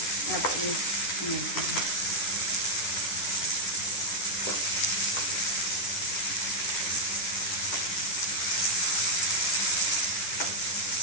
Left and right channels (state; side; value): late; right; 10 ms